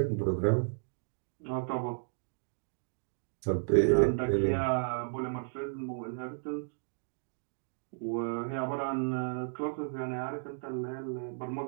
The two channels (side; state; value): left; silent; digital silence